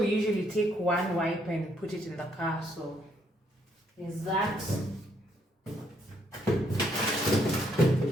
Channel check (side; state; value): both; normal; correlation 0.72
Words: usually take 1 wipe and put it in the car, so there's that.